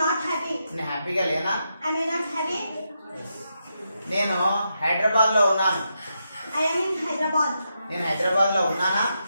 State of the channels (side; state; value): both; inverted; correlation -0.84